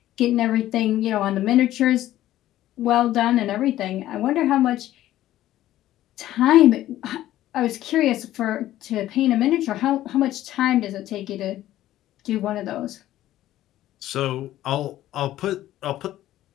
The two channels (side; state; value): right; quieter; 13.9 dB